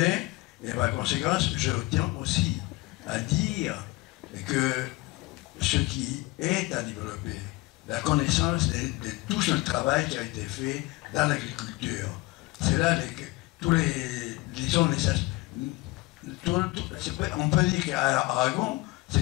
et par conséquent, je tiens aussi à dire que ce qui est à développer, la connaissance de tout ce travail qui a été fait dans l'agriculture. C'est là tous les disons, on peut dire qu'Aragon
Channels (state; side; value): quieter; right; 21.5 dB